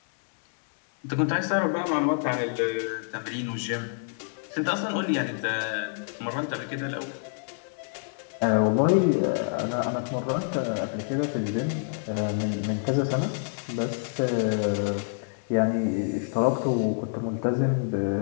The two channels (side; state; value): right; silent; digital silence